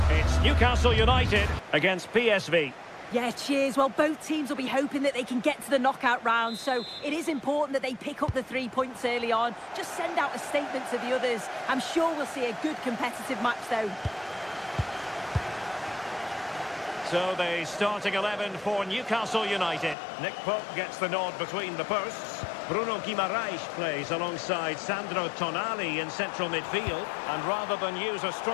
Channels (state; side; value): drops out; right; at 20.0 s